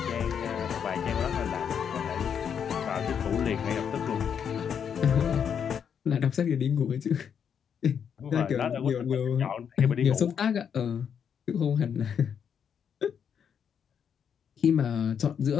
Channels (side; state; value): right; quieter; 7.7 dB